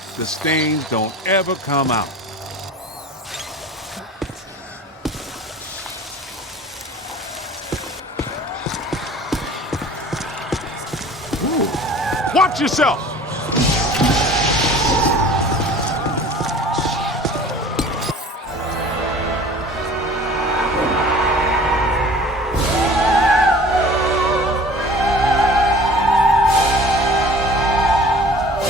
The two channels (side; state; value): both; normal; correlation 0.45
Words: the stains don't ever come out. Ooh. Watch yourself!